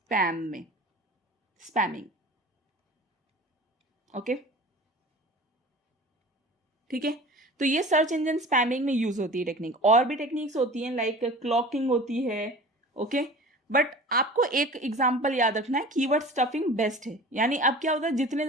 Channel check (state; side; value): normal; both; correlation 0.40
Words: में, स्पैमिंग, ओके, ठीक है। तो ये सर्च इंजन स्पैमिंग में यूज होती है टेक्निक। और भी टेक्निक्स होती हैं लाइक क्लॉकिंग होती है, ओके। बट आपको एक एग्जांपल याद रखना है, कीवर्ड स्टफिंग बेस्ट है। यानी अब क्या होता है, जितने